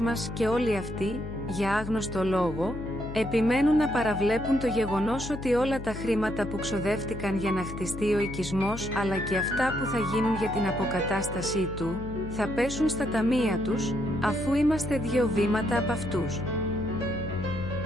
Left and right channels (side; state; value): left; noise; hum, 9 dB below the sound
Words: και όλοι αυτοί, για άγνωστο λόγο, επιμένουν να παραβλέπουν το γεγονός ότι όλα τα χρήματα που ξοδεύτηκαν για να χτιστεί ο οικισμός, αλλά και αυτά που θα γίνουν για την αποκατάστασή του, θα πέσουν στα ταμεία τους, αφού είμαστε 2 βήματα από αυτούς.